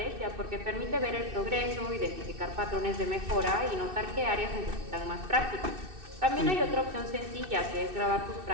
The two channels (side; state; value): left; late; 2.6 ms